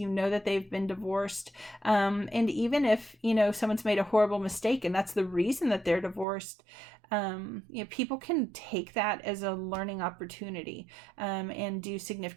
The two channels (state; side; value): drops out; left; at 6.2 s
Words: they've been divorced, and even if someone's made a horrible mistake and that's the reason that they're divorced, people can take that as a learning opportunity, and do